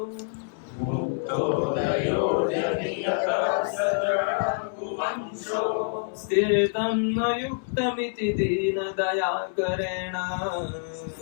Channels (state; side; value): silent; right; 58 dB below the other